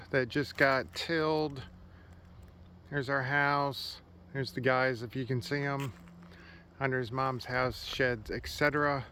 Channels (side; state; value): both; identical; correlation 1.00